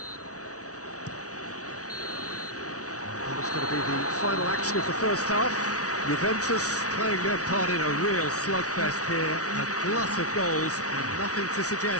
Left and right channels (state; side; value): late; right; 0.67 ms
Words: And it's going to be the final action of the first half. Juventus playing their part in a real slugfest here. A glut of goals and nothing to